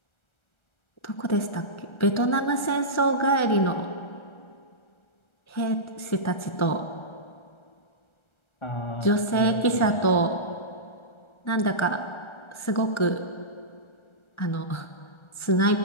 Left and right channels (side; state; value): right; late; 1.3 ms